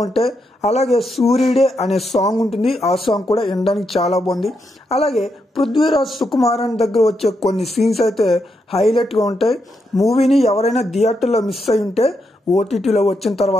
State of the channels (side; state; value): both; normal; correlation 0.82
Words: ఉంటాయి. అలాగే సూర్యుడే అనే సాంగ్ ఉంటుంది, ఆ సాంగ్ కూడా వినడానికి చాలా బాగుంది. అలాగే పృథ్వీరాజ్ సుకుమారన్ దగ్గర వచ్చే కొన్ని సీన్స్ అయితే హైలైట్గా ఉంటాయి. మూవీని ఎవరైనా థియేటర్లో మిస్ అయి ఉంటే ఓటీటీలో వచ్చిన